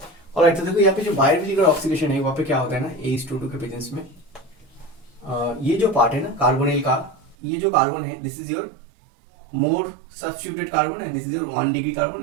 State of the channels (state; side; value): drops out; left; at 7.4 s